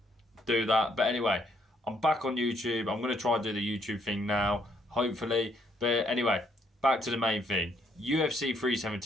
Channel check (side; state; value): both; normal; correlation 0.71